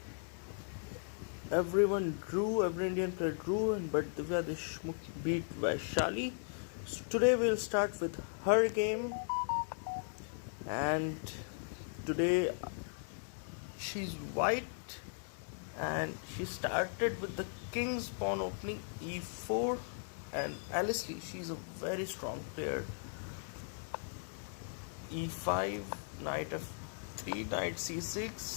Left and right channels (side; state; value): right; silent; digital silence